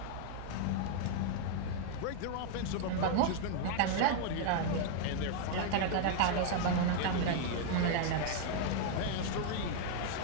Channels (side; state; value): both; different; correlation 0.00